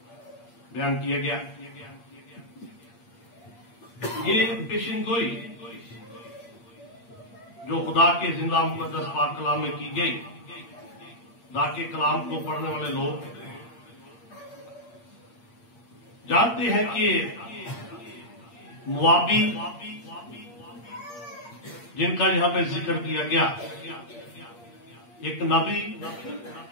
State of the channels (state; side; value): late; right; 8.6 ms